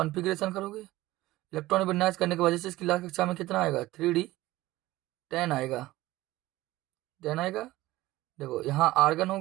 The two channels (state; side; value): quieter; left; 17.5 dB